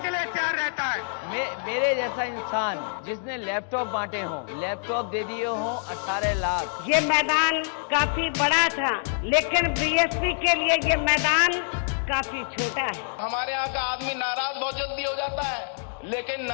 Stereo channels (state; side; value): silent; right; digital silence